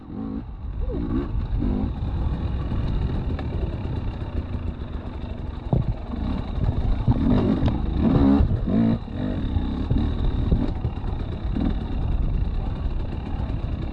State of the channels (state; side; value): identical; both; correlation 1.00